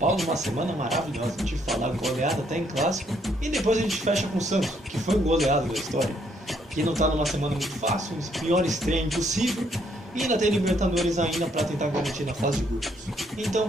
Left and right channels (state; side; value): normal; both; correlation 0.70